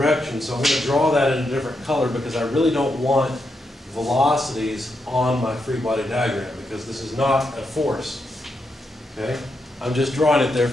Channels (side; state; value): both; normal; correlation 0.83